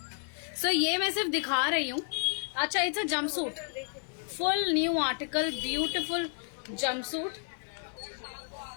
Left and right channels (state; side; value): silent; right; 57 dB below the other